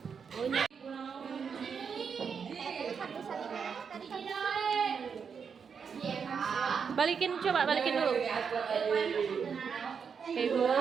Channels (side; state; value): left; quieter; 6.4 dB